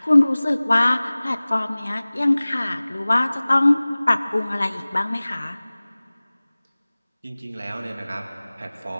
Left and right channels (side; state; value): both; inverted; correlation -0.99